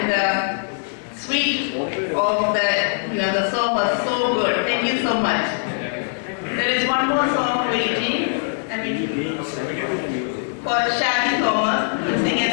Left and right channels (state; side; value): silent; right; digital silence